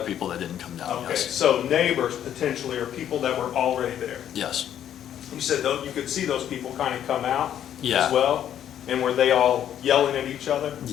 that didn't come down, Okay, yes. so neighbors potentially, or people that were already there? Yes. You said though, you could see those people kind of come out Yeah. as well? And were they all yelling at each other?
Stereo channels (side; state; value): right; quieter; 10.3 dB